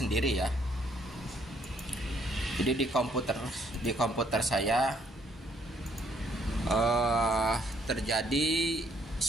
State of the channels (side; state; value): both; normal; correlation 0.68